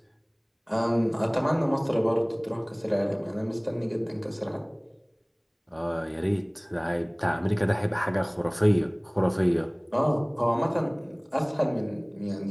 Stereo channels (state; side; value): identical; both; correlation 1.00